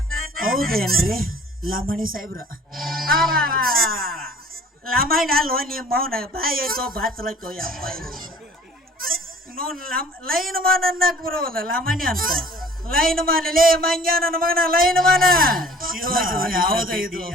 ಹೌದೇನ್ರಿ ಲಮಣಿ ಸಾಹೇಬ್ರ? ಲಮಣಿ ಅಲ್ವ ನಿಮ್ಮ ಮೌನ ಬಾಯಿ ಐತೋ ಬಾಚಲೈತೋ ಯಪ್ಪ. ನೋಡ್ ಲೈನ್ ಮಾನ್ ಅನ್ನಕ್ ಬರೋಲ್ಲ ಲಾಮಣ್ಯ ಅಂತ ಲೈನ್ ಮಾನ್ ಲೇ ಮಂಗ್ಯ ನನ್ನ ಮಗನ ಲೈನ್ ಮಾನ ಯಾವ್ದು ಇದು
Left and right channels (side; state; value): both; normal; correlation 0.50